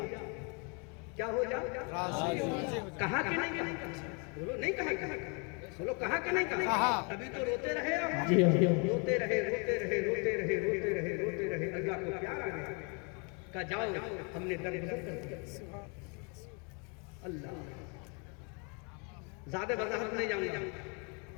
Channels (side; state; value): right; quieter; 34.9 dB